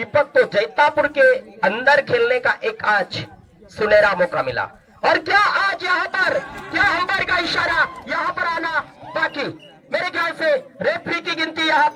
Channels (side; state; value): both; identical; correlation 1.00